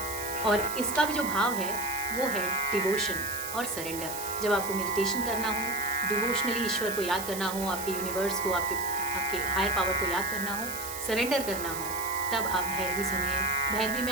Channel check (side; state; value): right; noise; hiss, 8 dB below the sound